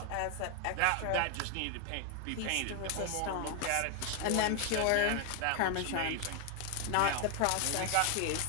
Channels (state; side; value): different; both; correlation 0.00